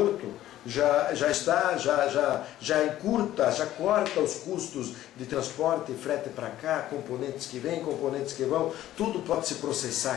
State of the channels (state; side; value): quieter; right; 13.6 dB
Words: já encurta, já corta os custos de transporte e frete para cá, componentes que vêm, componentes que vão, tudo pode se processar